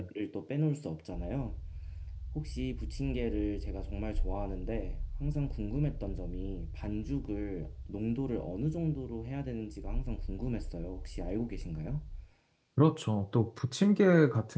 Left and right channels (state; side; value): identical; both; correlation 1.00